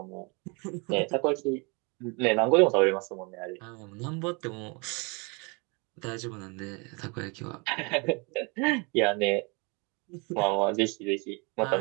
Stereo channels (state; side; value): quieter; left; 30.9 dB